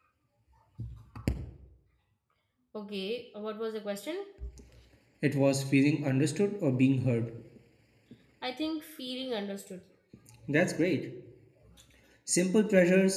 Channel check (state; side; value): identical; both; correlation 1.00